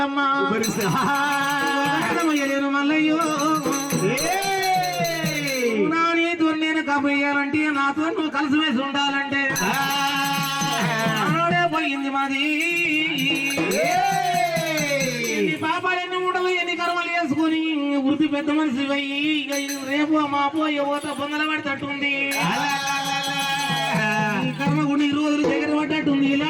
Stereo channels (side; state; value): both; identical; correlation 1.00